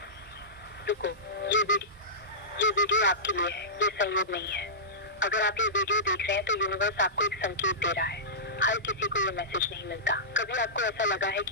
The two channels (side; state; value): both; normal; correlation -0.17